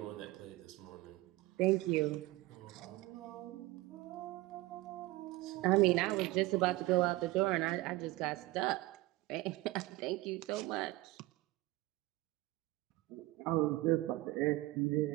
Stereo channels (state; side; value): quieter; left; 19.5 dB